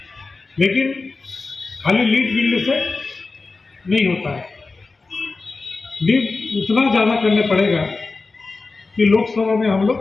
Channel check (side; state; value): right; quieter; 3.9 dB